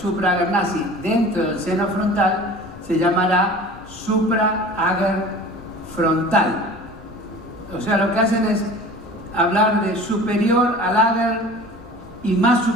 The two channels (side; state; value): both; normal; correlation 0.41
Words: nazi dentro del seno frontal se llamará supra-agar frontal. O sea, lo que hacen es hablar de superior al agar y más